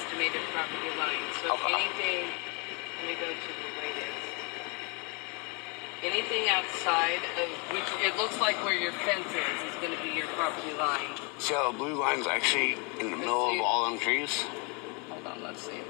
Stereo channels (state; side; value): quieter; right; 33.0 dB